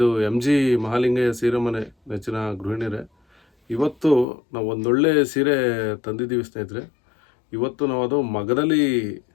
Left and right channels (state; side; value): drops out; right; at 4.2 s